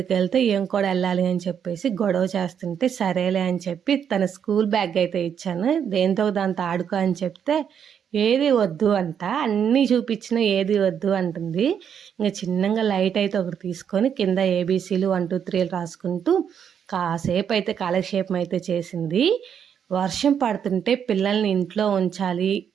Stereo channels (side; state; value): left; quieter; 8.1 dB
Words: వెళ్తే ఏం కూడా వెళ్ళాలి అని చెప్పేసి గొడవ చేస్తుంటే సరేలే అని చెప్పి తన స్కూల్ బ్యాగ్ అయితే ఇచ్చాను. దేంతో దాంతో ఆడుకో అని చెప్తే ఏది వద్దు అంట, అన్నీ చూపించిన ఏది వద్దు అంటుంది. ఇంకా చిన్నగా లైట్ అయితే ఒకటి తీసుకొని కింద ఏబీసీలు 1 2 3 రాసుకుంటూ కాసేపు అయితే కాలక్షేపం అయితే చేసింది. వర్షం పడుతుంటే పిల్లల్ని ఇంట్లో ఉంచాలి,